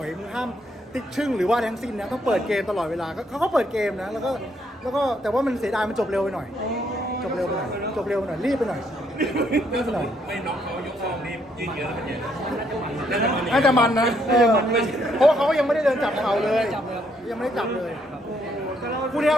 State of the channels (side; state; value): both; normal; correlation 0.72